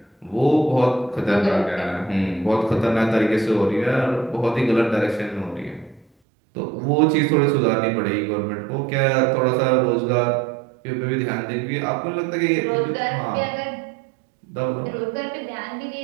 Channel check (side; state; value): left; drops out; at 6.1 s